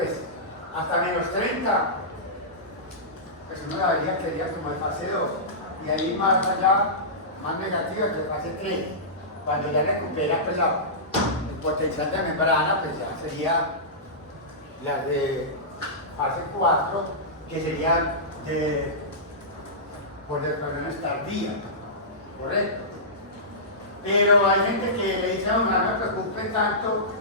hasta menos 30, pues uno la vería que sería como de fase 2. Y ahí más allá, más negativa que fase 3. Cuando ya recupera pues, el potencial de membrana, pues ya sería la de fase 4, que sería por desconexiones tardías, ¿correcto? Pero hay gente que le dice a uno, no me preocupe tanto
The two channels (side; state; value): both; normal; correlation -0.17